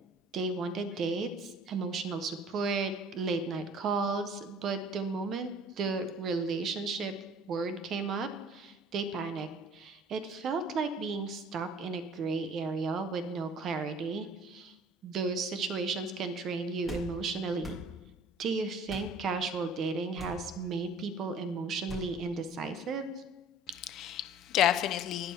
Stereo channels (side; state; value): both; normal; correlation 0.49